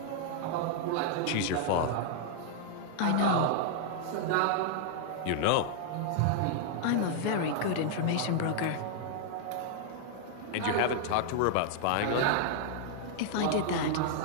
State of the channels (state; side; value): different; both; correlation -0.01